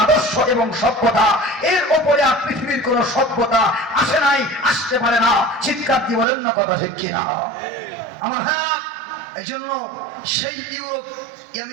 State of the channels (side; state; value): left; drops out; at 6.2 s